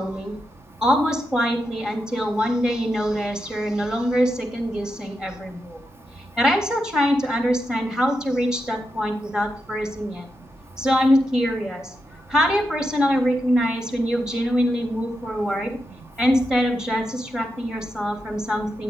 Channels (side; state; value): both; normal; correlation 0.86